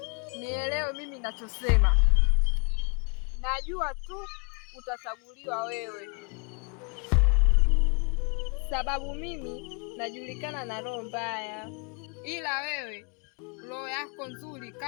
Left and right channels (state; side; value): quieter; right; 33.4 dB